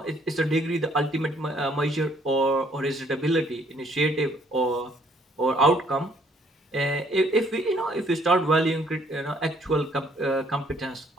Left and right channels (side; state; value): both; normal; correlation 0.64